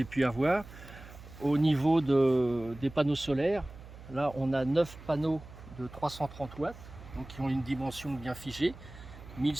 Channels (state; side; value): noise; right; hum, 17 dB below the sound